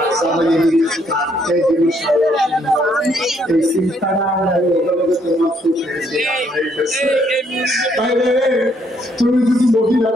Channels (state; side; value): normal; both; correlation 0.70